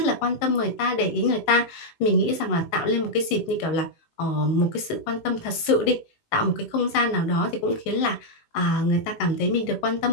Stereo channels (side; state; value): right; late; 18 ms